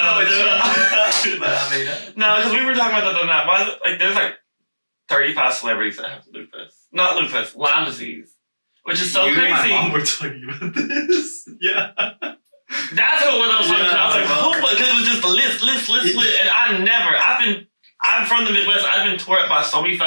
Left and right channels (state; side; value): inverted; both; correlation -1.00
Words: because we were talking about that the night. Why? Like, there's like 35 celebrities that have lupus. Not lupus, Lyme disease, which is so crazy. And my mom were talking about this. Yeah. That's what I was talking about. I was like, oh, because it was just list. And I'm from the Midwest. I've been tore up by so many